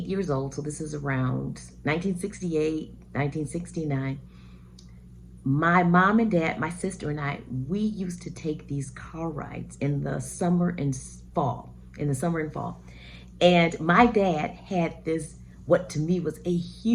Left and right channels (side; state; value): both; identical; correlation 1.00